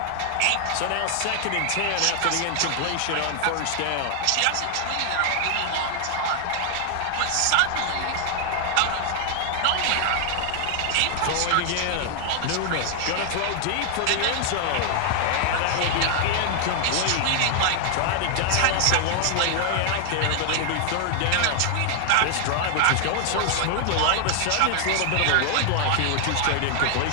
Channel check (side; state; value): both; different; correlation 0.00